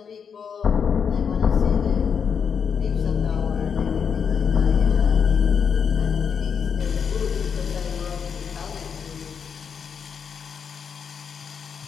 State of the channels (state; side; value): quieter; right; 6.8 dB